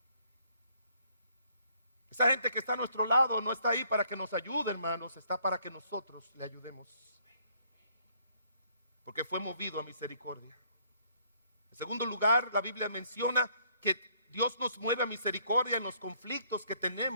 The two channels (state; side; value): inverted; both; correlation -0.65